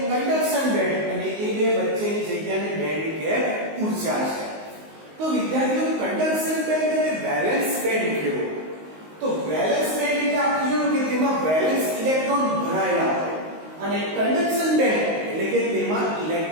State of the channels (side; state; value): left; late; 19 ms